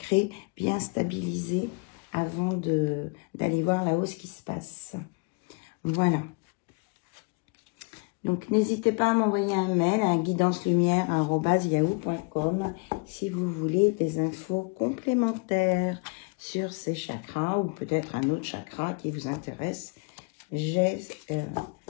bien stabilisé avant d'aller voir là-haut ce qui se passe. Voilà. Donc, n'hésitez pas à m'envoyer un mail à guidancelumière@yahoo.com si vous voulez des infos complémentaires sur ces chakras ou peut-être un autre chakra qui vous intéresse. J'ai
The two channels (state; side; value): quieter; right; 31.7 dB